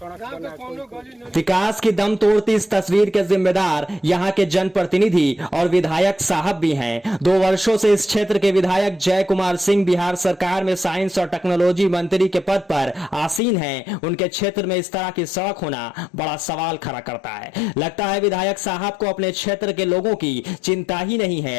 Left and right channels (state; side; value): drops out; right; at 13.4 s